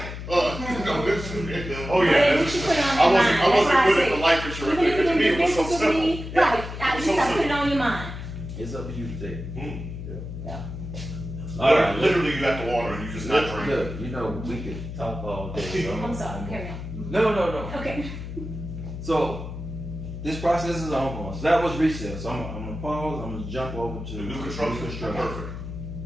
No, this, oh But yeah, at this least you is, put it on I your wasn't, mind. I That's wasn't why I good say, at the life insurance even thing, if to me you it was so think simple. disagree, right, at It's least so I put it simple. on your mind. It's up to you to take. Yeah. All right, Literally, you got the water and you just not drinking. Look, you know, we could talk all day. So I'm sorry, carry on. No. Okay. So, this process is ongoing. So that was resale. So I'm gonna pause, I'm gonna jump over to The new construction, perfect.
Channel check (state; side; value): noise; left; hum, 8 dB below the sound